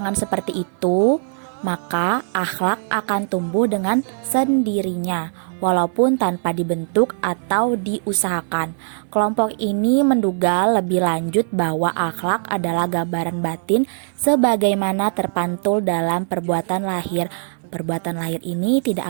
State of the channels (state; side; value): silent; left; 65 dB below the other